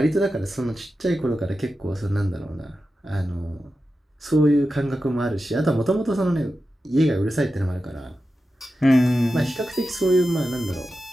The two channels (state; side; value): normal; both; correlation 0.92